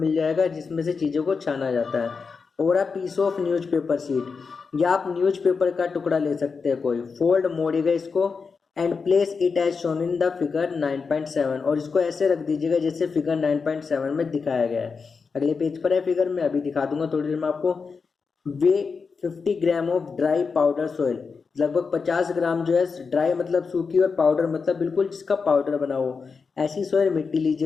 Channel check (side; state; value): right; quieter; 5.1 dB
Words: जाएगा, जिसमें से चीज़ों को छाना जाता है। और a piece of newspaper sheet, या आप न्यूज़पेपर का टुकड़ा ले सकते हैं कोई। फोल्ड, मोड़िएगा इसको, and place it as shown in the figure 9.7, और इसको ऐसे रख दीजिएगा जैसे फिगर 9.7 में दिखाया गया है। अगले पेज पर है फिगर, में अभी दिखा दूंगा थोड़ी देर में आपको। वे 50 gram of dry powder soil, लगभग 50 ग्राम जो है ड्राई मतलब सूखी, और पाउडर मतलब बिल्कुल जिसका पाउडर बना हो, ऐसी सॉइल मिट्टी